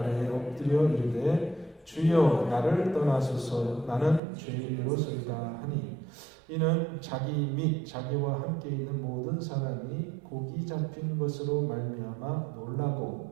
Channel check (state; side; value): drops out; left; at 4.2 s